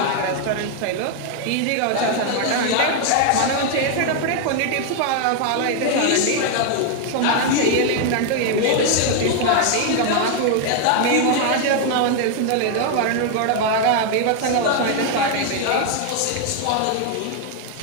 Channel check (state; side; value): different; both; correlation 0.00